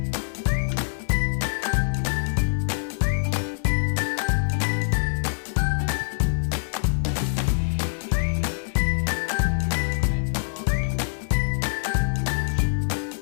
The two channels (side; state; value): right; silent; digital silence